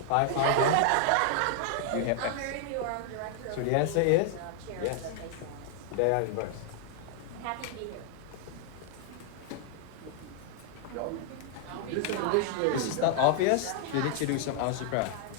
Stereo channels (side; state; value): both; different; correlation 0.00